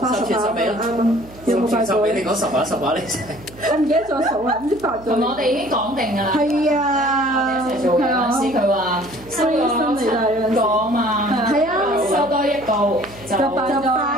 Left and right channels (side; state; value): right; noise; hum, 20 dB below the sound